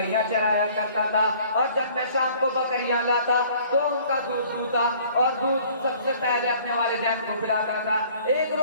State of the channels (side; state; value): both; inverted; correlation -0.54